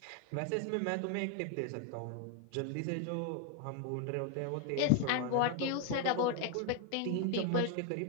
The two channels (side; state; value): both; different; correlation 0.01